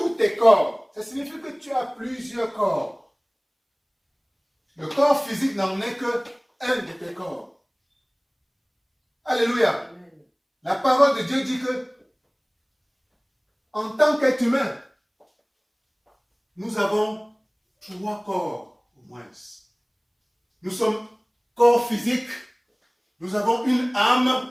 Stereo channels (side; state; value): both; identical; correlation 1.00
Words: tes corps, ça signifie que tu as plusieurs corps. Le corps physique n'en est que un de tes corps. Alléluia. Amen. La parole de Dieu dit que en tant qu'être humain, nous avons 3 corps au moins. Nous sommes corps physique, nous avons une